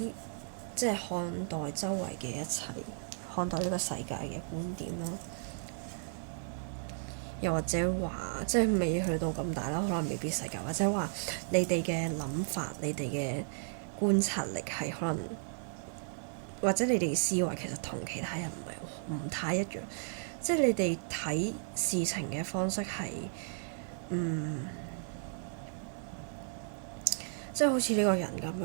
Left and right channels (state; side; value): silent; left; digital silence